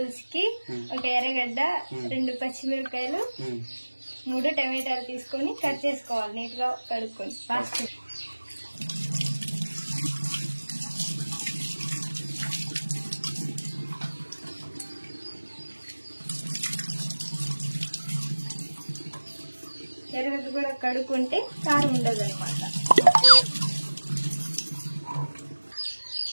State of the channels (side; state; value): both; inverted; correlation -1.00